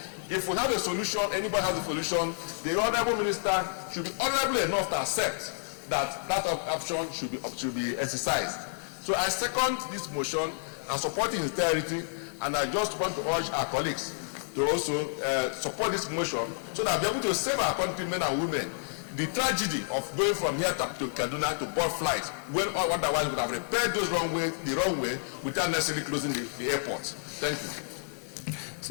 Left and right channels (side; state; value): right; silent; 56 dB below the other